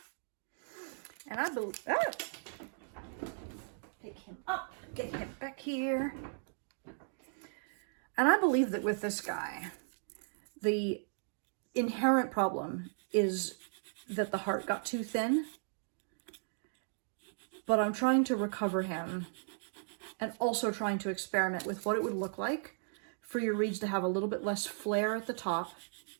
And I believe, pick him up, get him back here. And I believe that with this guy, the inherent problem is that the heart got too thin. But I'm trying to recover him and also trying to experiment with what it would look like for your reeds to have a little bit less flare at the top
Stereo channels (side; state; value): left; silent; digital silence